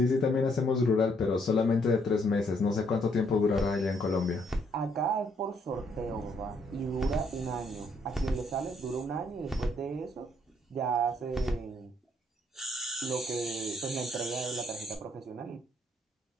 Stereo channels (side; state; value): both; normal; correlation 0.69